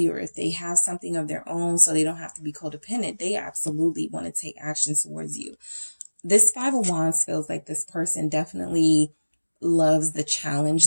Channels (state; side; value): inverted; both; correlation -1.00